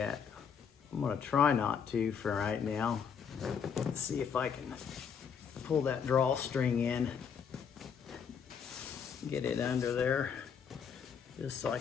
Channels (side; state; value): right; quieter; 7.0 dB